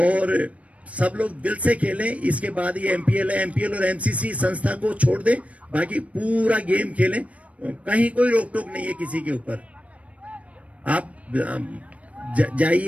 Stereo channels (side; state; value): left; late; 0.065 ms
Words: सब लोग दिल से खेलें। इसके बाद ये एमपीएल है, एमपीएल और एमसीसी संस्था को छोड़ दें, बाकी पूरा गेम खेलें। कहीं कोई रोक टोक नहीं है किसी के ऊपर। आप